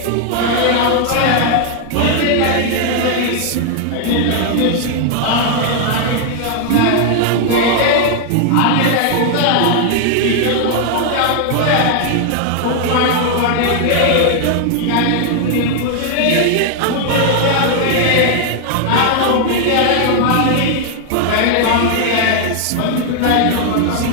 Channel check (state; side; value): different; both; correlation 0.00